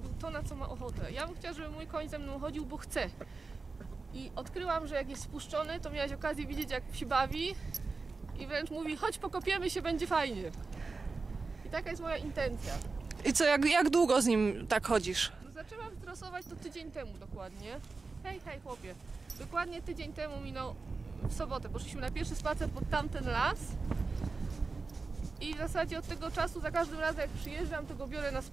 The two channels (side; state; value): left; quieter; 4.1 dB